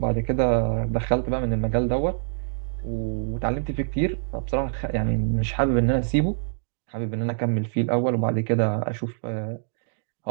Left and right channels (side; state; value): left; silent; digital silence